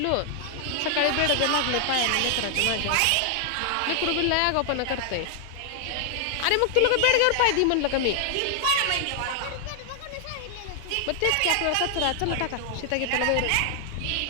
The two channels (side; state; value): both; different; correlation 0.00